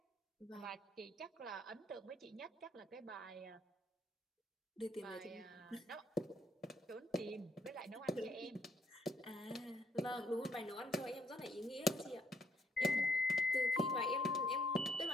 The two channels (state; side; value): normal; both; correlation 0.70